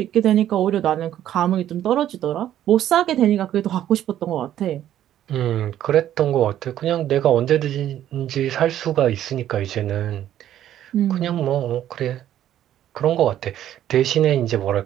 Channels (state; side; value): quieter; left; 11.7 dB